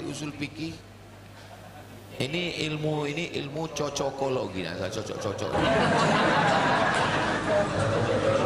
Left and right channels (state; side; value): identical; both; correlation 1.00